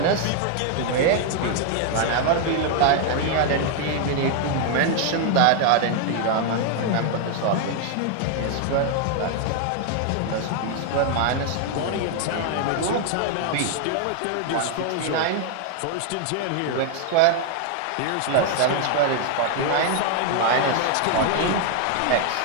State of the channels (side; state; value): both; different; correlation 0.00